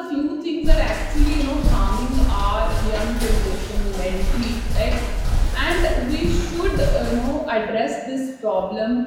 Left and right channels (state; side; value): identical; both; correlation 1.00